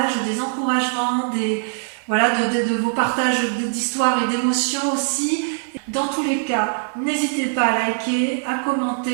des encouragements, de vos partages d'histoires et d'émotions aussi. Dans tous les cas, n'hésitez pas à liker, à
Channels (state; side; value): silent; left; digital silence